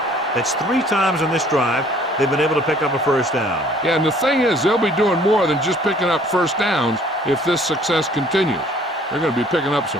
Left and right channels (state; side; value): normal; both; correlation 0.57